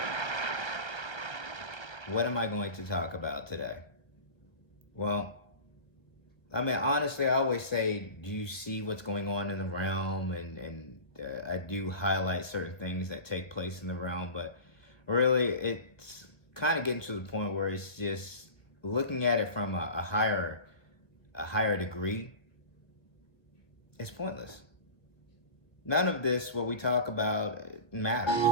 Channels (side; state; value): right; late; 1.3 ms